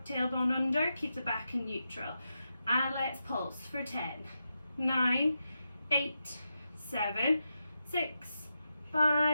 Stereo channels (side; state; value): both; inverted; correlation -0.87